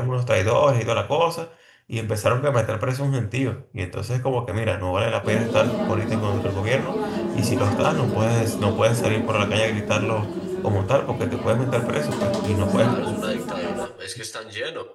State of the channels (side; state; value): both; identical; correlation 1.00